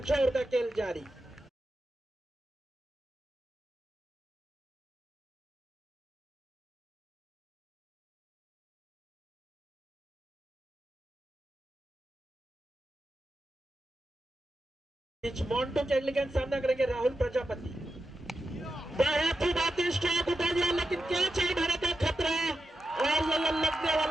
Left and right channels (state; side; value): normal; both; correlation 0.89